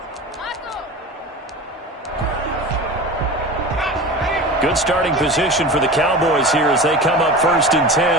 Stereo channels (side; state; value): both; normal; correlation 0.32